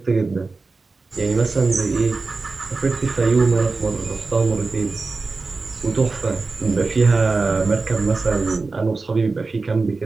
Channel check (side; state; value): left; quieter; 3.9 dB